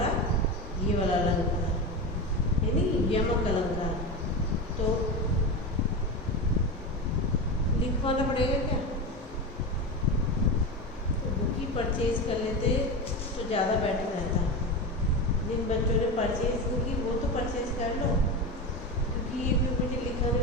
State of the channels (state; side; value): normal; both; correlation 0.21